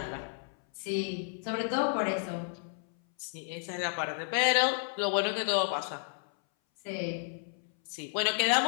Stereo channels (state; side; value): silent; right; 56 dB below the other